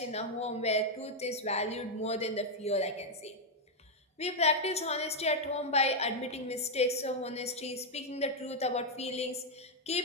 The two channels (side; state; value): both; normal; correlation -0.01